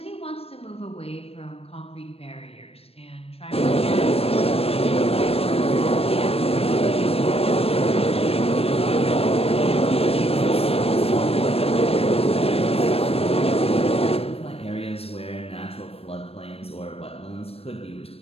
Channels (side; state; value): right; late; 0.28 ms